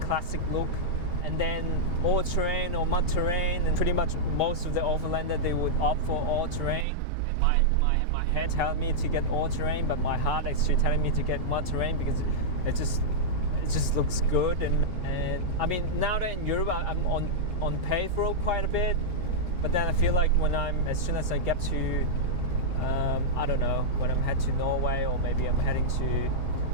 classic look. And then all terrain or mud terrain, and pretty much most of the overlander they would opt for all terrain. And my head telling me to get all terrain, but my heart actually telling me to get mud terrain because it just looks good. And I mean, now that in Europe I'm on paved road quite a bit, but then I feel like as soon as I get to I don't know, when I'm heading to Norway, or maybe I'm heading to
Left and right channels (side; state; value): both; normal; correlation -0.07